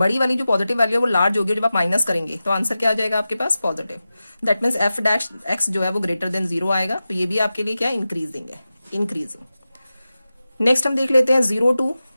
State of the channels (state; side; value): inverted; both; correlation -0.94